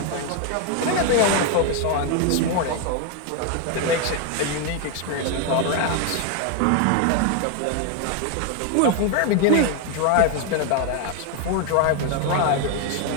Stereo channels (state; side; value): different; both; correlation 0.01